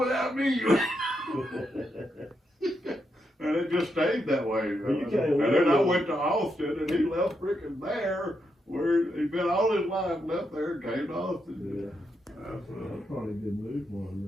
me. And it just stayed that way. You can't And live then I with- went to Austin, and he left freaking there, where he'd been all his life, left there, and came to Austin. Yeah, That's, that's probably a good move for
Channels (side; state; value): both; normal; correlation 0.82